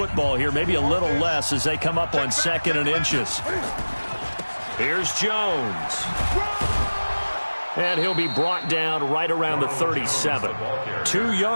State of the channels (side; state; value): both; inverted; correlation -1.00